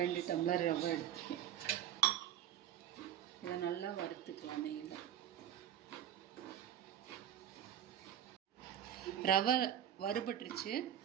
டம்ளர் ரவை எடுத்துருக்கேன். இதை நல்லா வறுத்துக்கலாம் நெய்யில். ரவை வறுபட்டுருச்சு.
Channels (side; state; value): left; quieter; 10.6 dB